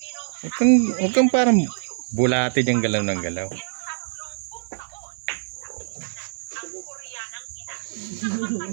Huwag kang parang bulate dyan galaw ng galaw.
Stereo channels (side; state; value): left; silent; 59 dB below the other